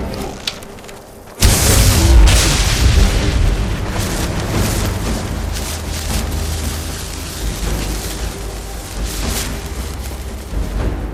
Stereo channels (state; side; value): identical; both; correlation 1.00